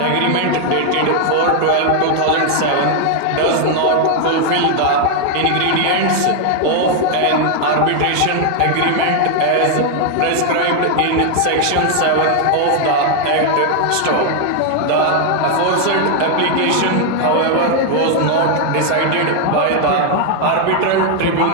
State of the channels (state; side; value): different; both; correlation 0.00